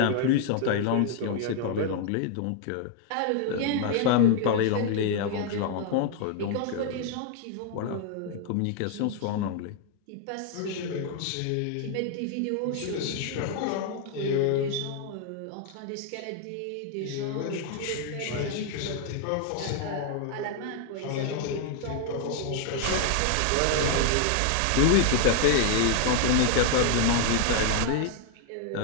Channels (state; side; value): different; both; correlation 0.00